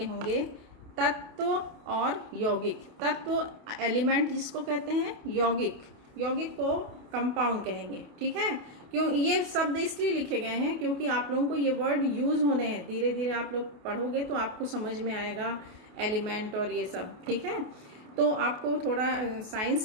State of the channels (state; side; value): late; left; 28 ms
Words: होंगे, तत्व और यौगिक। तत्व एलिमेंट जिसको कहते हैं, यौगिक को कंपाउंड कहेंगे। ठीक है, क्यों ये शब्द इसलिए लिखे गए हैं क्योंकि आप लोगों को ये वर्ड यूज होने हैं। धीरे धीरे आप लोग पढ़ोगे तो आपको समझ में आएगा एलिमेंट और ये सब। ठीक है, तो आपको थोड़ा